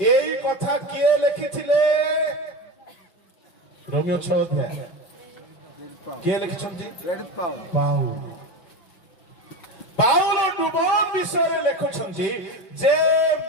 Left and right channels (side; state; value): right; late; 5.2 ms